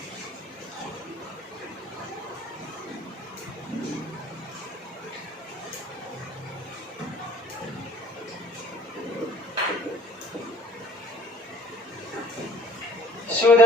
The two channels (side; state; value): both; normal; correlation 0.53